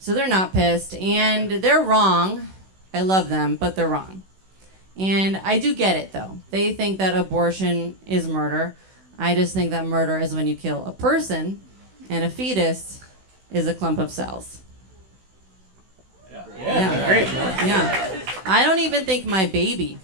they're not pissed. And they're wrong. I love them, but they're wrong. And I do get it, though. They think that abortion is murder. I just think that murder is when you kill a person, and a fetus is a clump of cells. Yeah. Great. Yeah. I don't even think my baby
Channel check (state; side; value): late; left; 16 ms